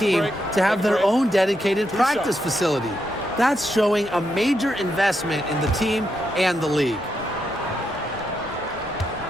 to have their own dedicated practice facility. That's showing a major investment in the team and the league.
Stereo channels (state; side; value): normal; both; correlation 0.82